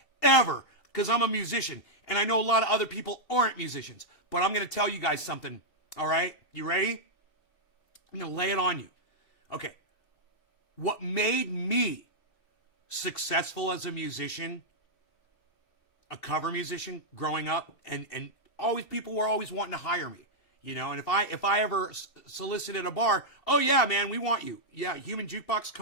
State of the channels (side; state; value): right; late; 2.7 ms